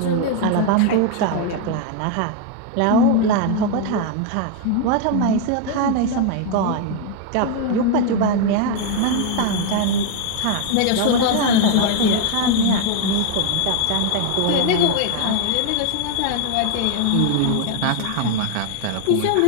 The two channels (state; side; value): different; both; correlation 0.01